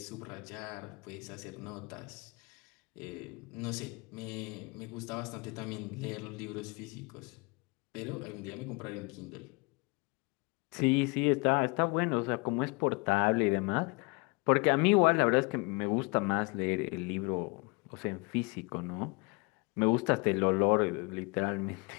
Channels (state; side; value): quieter; right; 29.0 dB